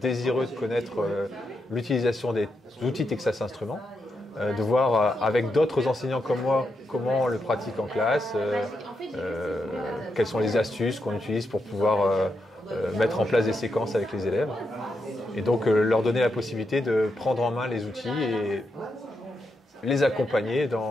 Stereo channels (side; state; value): both; normal; correlation 0.84